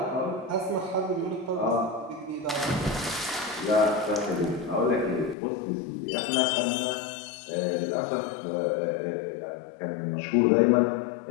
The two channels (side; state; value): right; drops out; at 5.4 s